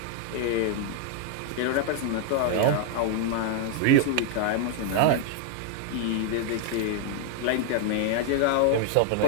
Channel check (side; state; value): both; different; correlation 0.00